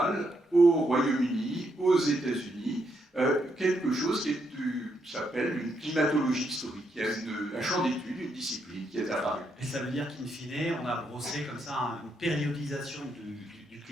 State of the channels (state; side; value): normal; both; correlation 0.78